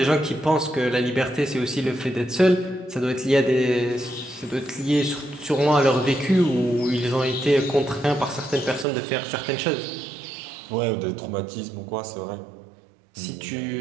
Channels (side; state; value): left; drops out; at 8.8 s